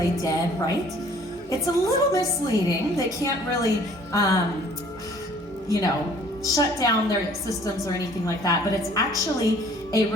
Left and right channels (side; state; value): both; normal; correlation 0.55